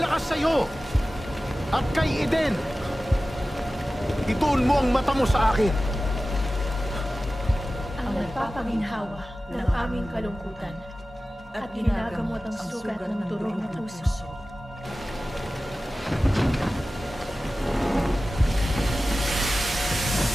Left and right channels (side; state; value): both; normal; correlation 0.96